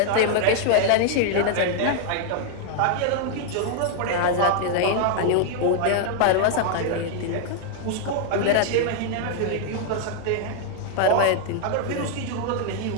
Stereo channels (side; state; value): both; different; correlation 0.00